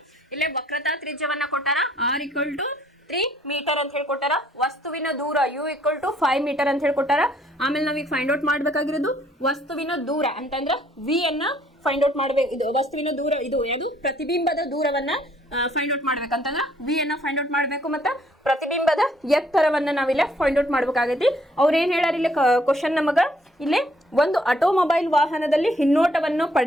ಇಲ್ಲೇ ವಕ್ರತಾ ತ್ರಿಜ್ಯವನ್ನ ಕೊಟ್ಟಾರ. r = 3 ಮೀಟರ್ ಅಂತ ಹೇಳ್ಕೊಟ್ಟಾರ. ವಸ್ತುವಿನ ದೂರ u = 5 ಮೀಟರ್ ಅಂತ ಹೇಳ್ಕೊಟ್ಟಾರ. ಆಮೇಲೆ ನಾವೀಗ ಫೈಂಡ್ ಔಟ್ ಮಾಡ್ಬೇಕಾಗಿರೋದು ವಸ್ತುವಿನ ದೂರ ಅಂತಂದ್ರೆ v ಅನ್ನ ಫೈಂಡ್ ಔಟ್ ಮಾಡ್ಬೇಕು. ಇದು ವಸ್ತುವಿನ ದೂರ, ಇದು ಯಾವುದು ಪ್ರತಿಬಿಂಬದ ದೂರವನ್ನ ಫೈಂಡ್ ಔಟ್ ಮಾಡ್ಬೇಕಂತಂದ್ರೆ v ಅನ್ನ ಫೈಂಡ್ ಔಟ್ ಮಾಡ್ಬೇಕು. ಮತ್ತೆ ಪ್ರತಿಬಿಂಬದ ಎತ್ತರವನ್ನ ನಾವಿಲ್ಲ ಫೈಂಡ್ ಔಟ್ ಮಾಡ್ಬೇಕಾಗೈತಿ. ಅವ್ರು ಏನ್ ಹೇಳ್ಯಾರ ಇಲ್ಲಿ ಕ್ವಶನ್ ನಮಗ, ಇಲ್ಲಿ ಒಂದು ಆಟೋಮೊಬೈಲ್ ವಾಹನದಲ್ಲಿ ಹಿನ್ನೋಟವನ್ನು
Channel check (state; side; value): normal; both; correlation 0.64